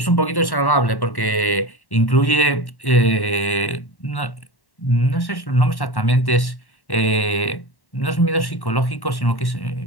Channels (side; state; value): right; late; 1.1 ms